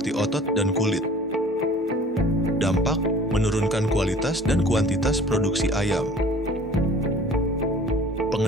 otot dan kulit. Dampak, menurunkan kualitas dan kuantitas produksi ayam.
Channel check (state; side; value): normal; both; correlation 0.48